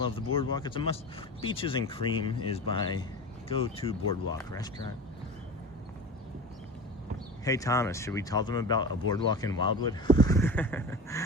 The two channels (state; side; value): normal; both; correlation 0.32